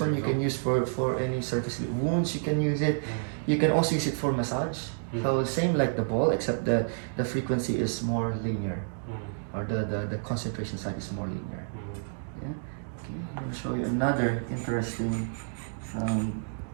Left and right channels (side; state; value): left; silent; digital silence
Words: you can use for any surface wounds. You can use it. You can also use it for massage. So same like the ball, except the frequency is more linear, or the concentration side is more linear. Yeah. Okay. I'm going to show you another interesting